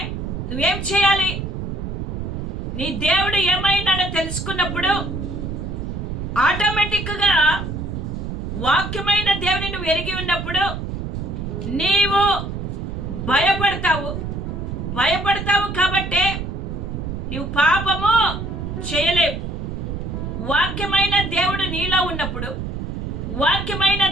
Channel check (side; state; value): right; noise; rumble, 5 dB below the sound